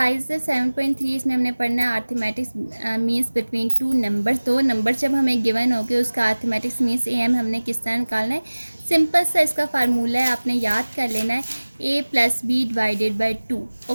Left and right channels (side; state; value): both; inverted; correlation -1.00